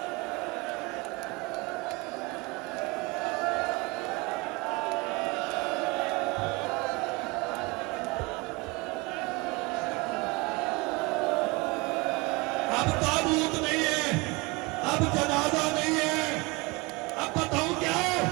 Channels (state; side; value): quieter; left; 25.9 dB